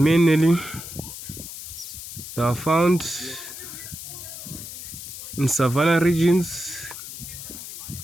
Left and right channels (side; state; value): left; noise; hiss, 11 dB below the sound